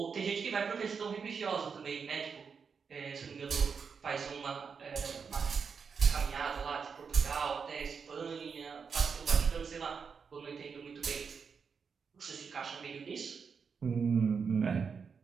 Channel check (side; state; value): left; quieter; 5.9 dB